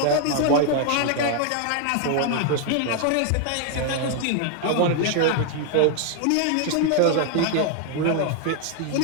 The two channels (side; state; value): both; different; correlation 0.00